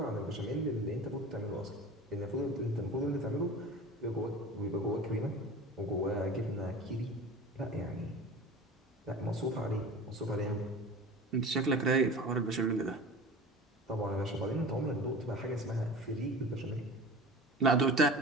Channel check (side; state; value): both; normal; correlation 0.36